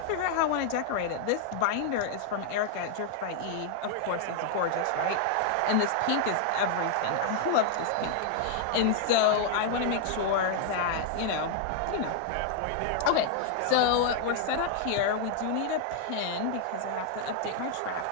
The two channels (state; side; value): different; both; correlation 0.00